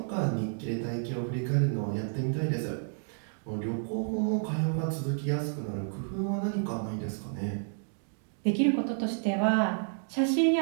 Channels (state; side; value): silent; left; digital silence